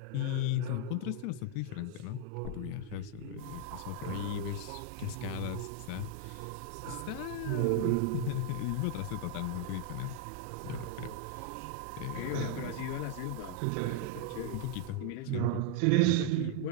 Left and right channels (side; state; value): both; different; correlation 0.00